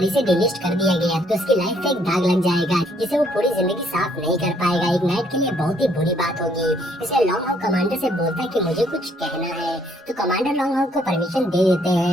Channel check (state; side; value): normal; both; correlation 0.67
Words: से डिलिस्ट कर दिया गया तो उसकी लाइफ पे एक दाग लग जाएगा जिसे वो पूरी जिंदगी साफ नहीं कर पाएगा। एक नाइट के लिए बहुत ही बुरी बात होगी। इसलिए लॉन्ग हाउ कमांडर से बोलता है कि मुझे कुछ कहना है। तो कमांडर लॉन्ग हाउ को परमिशन दे देते